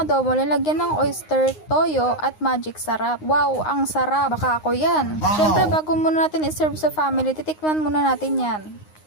adobo, lalagyan ng oyster, toyo, at magic sarap. Wow, ang sarap. Baka ako yan. Syempre, bago muna natin iserve sa family, titikman muna natin yan.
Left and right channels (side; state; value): right; late; 9.6 ms